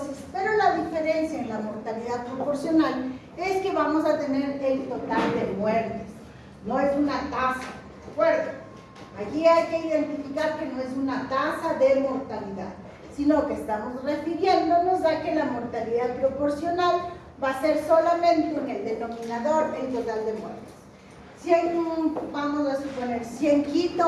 pero la diferencia en la mortalidad proporcional es que vamos a tener el total de muertes, no es una tasa, ¿de acuerdo? Aquí hay que identificar que no es una tasa de mortalidad, sino que estamos refiriéndonos a que la mortalidad proporcional va a ser solamente en el denominador el total de muertes. Si vamos a suponer, si en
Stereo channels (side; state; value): both; identical; correlation 1.00